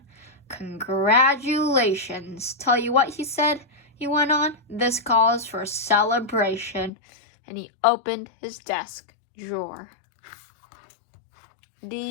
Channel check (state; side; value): drops out; right; at 6.9 s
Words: Congratulations. Tell you what, he said, he went on. This calls for a celebration. And he opened his desk drawer.